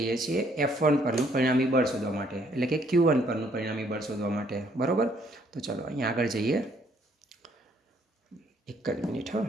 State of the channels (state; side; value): normal; both; correlation 0.66